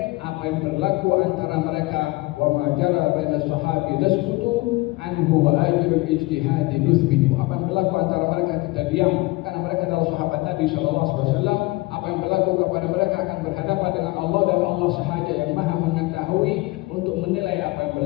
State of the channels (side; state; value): right; quieter; 21.9 dB